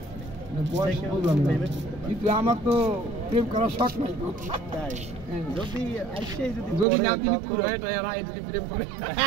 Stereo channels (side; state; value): left; drops out; at 6.9 s